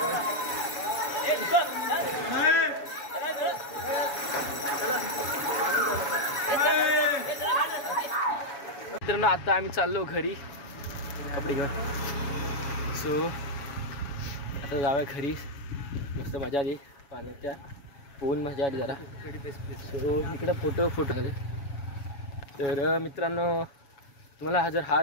मित्रांनो आता आम्ही चाललो घरी कपडे घेऊन. सो आता जाऊया घरी. मस्त मजा आली पाण्याच्या. पोहून मजा आली जरा. सो इकडं फोटो झाले. तर मित्रांनो तुम्हाला जर हा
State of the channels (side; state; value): right; late; 7.1 ms